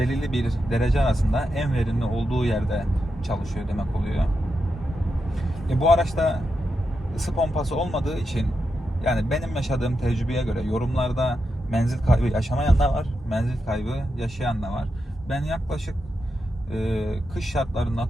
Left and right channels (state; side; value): normal; both; correlation 0.87